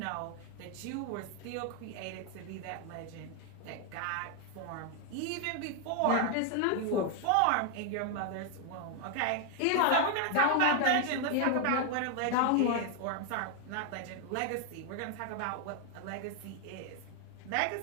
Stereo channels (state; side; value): different; both; correlation 0.00